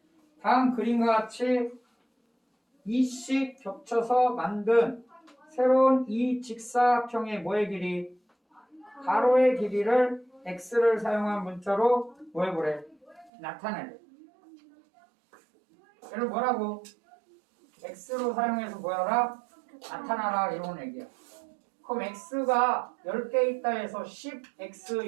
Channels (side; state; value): left; drops out; at 13.3 s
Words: 다음 그림과 같이 이씩 겹쳐서 만든 새로운 이 직사각형의 뭐의 길이? 가로의 길이를 x를 사용한 문자로 뭐 해보래? 나타내래. 얘를 뭐라고? x로 사용해서 뭐하라? 나타나라 이런 얘기야. 그럼 x가 10개 있다 해서 10x